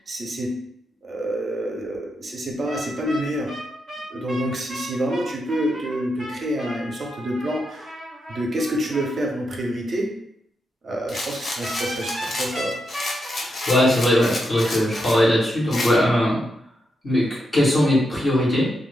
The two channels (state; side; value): normal; both; correlation 0.84